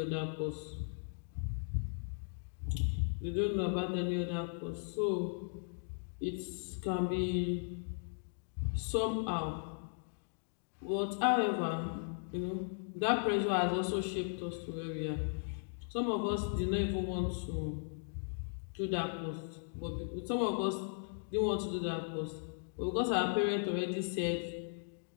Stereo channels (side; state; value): right; silent; digital silence